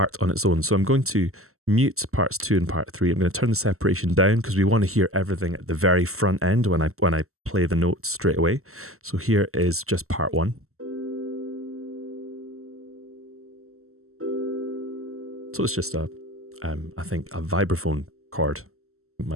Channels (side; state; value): left; late; 0.63 ms